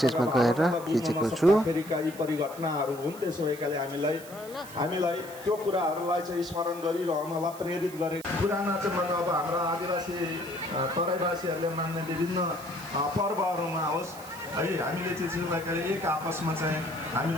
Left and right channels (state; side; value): noise; right; hiss, 17 dB below the sound